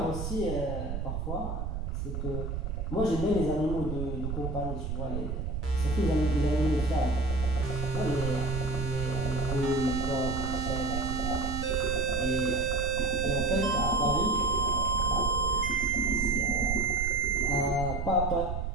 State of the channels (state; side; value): noise; right; rumble, 4 dB below the sound